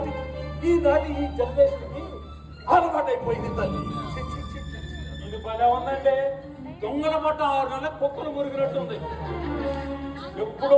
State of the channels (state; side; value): identical; both; correlation 1.00